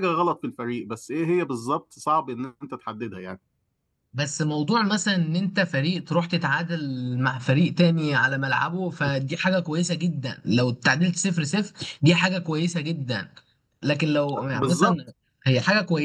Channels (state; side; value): identical; both; correlation 1.00